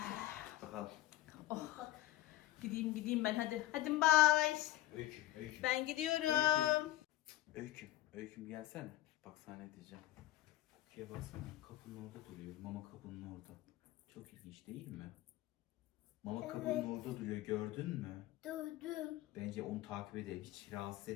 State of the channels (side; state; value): right; quieter; 15.3 dB